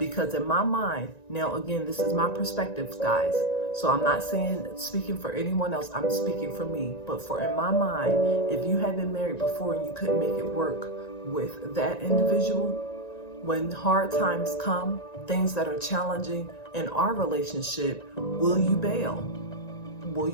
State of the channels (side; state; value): right; late; 1.9 ms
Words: in my mind, now again, this is my perspective, guys. So I'm not speaking for anyone else, I'm speaking for me. But in my mind, if you have been married before and you couldn't make it work with that individual, when hard times come, things that are challenging in our relationship, will you bail? Will